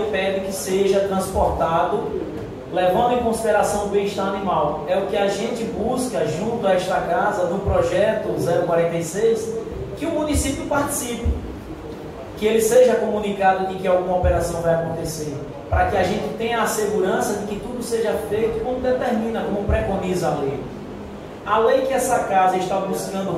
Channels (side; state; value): both; identical; correlation 1.00